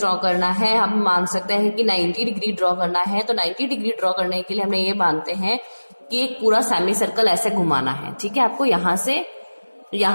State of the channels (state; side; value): inverted; both; correlation -1.00